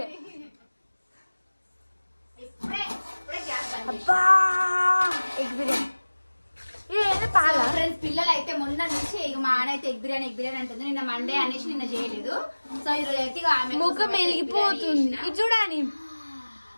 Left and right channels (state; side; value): inverted; both; correlation -1.00